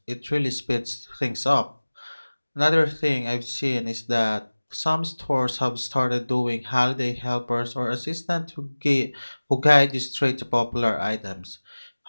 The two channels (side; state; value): both; inverted; correlation -1.00